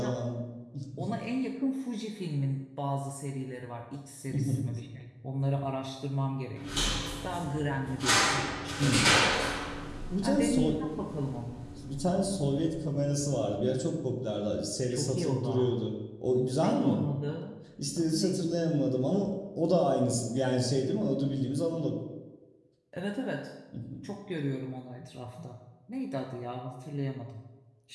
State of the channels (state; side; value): identical; both; correlation 1.00